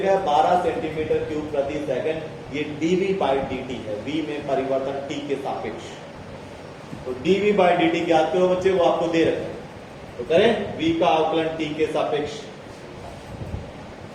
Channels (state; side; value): identical; both; correlation 1.00